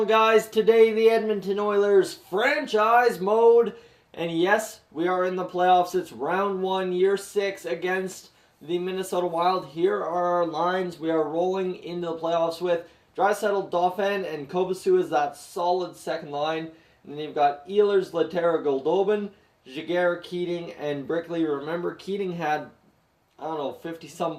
guys. Today, the Edmonton Oilers franchise mode. And yes, we are in the playoffs. It's round 1, year 6 against the Minnesota Wild. Here are our lines we are rolling into the playoffs with. Draisaitl, Dauphin, and Kobasu is that solid second line. And then you've got Ehlers, Lehtera, Goldobin, Jaguar, Keating, and Brickley. Remember, Keating had 50-some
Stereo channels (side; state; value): both; identical; correlation 1.00